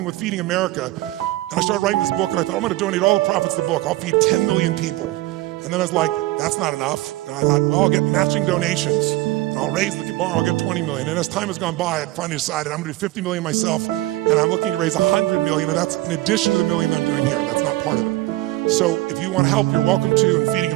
with Feeding America, and I started writing this book, and I thought, I'm going to donate all the profits of the book. I'll feed 10 million people. And then I was like, that's not enough. And I thought, well, I'll get matching donations, and I'll raise the bar, I'll get 20 million. And as time has gone by, I finally decided I'm going to do 50 million myself, and I'm looking to raise 100 million, and that's in addition to the 1 million I'm doing here. That's not part of it. So if you want help, you're welcome to, and Feeding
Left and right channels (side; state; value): left; quieter; 17.9 dB